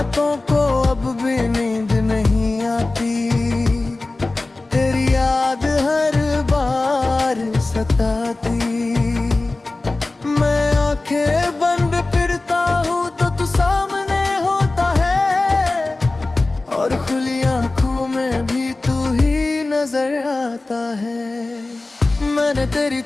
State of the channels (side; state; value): right; quieter; 3.1 dB